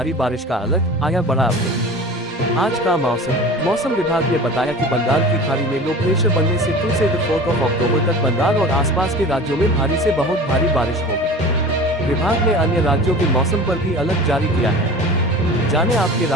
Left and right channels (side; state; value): both; normal; correlation 0.38